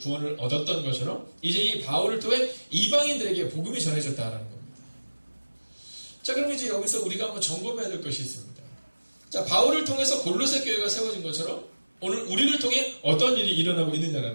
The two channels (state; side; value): inverted; both; correlation -1.00